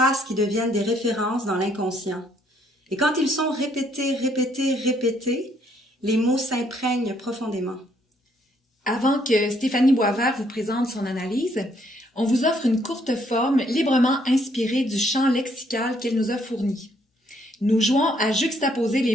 qui deviennent des références dans l'inconscient. Et quand ils sont répétés, les mots s'imprègnent profondément. Avant que Stéphanie Boisvert vous présente son analyse, on vous offre une courte forme librement inspirée du champ lexical qu'elle nous a fourni. Nous jouons à juxtaposer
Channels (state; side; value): normal; both; correlation 0.69